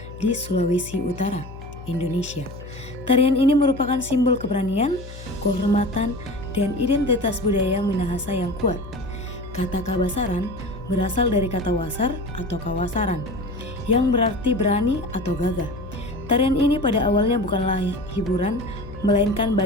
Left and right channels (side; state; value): left; noise; hum, 14 dB below the sound